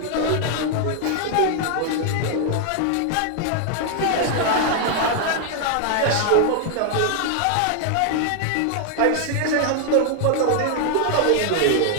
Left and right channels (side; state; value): both; different; correlation 0.00